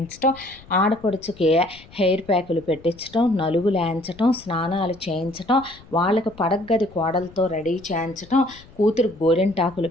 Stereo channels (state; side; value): noise; left; rumble, 23 dB below the sound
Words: ఆడపడుచుకి హెయిర్ ప్యాకులు పెట్టించటం, నలుగులు వేయించటం, స్నానాలు చేయించటం, వాళ్ళకి పడగ్గది కోడలతో రెడీ చేయించటం, కూతురు గోరింటాకులు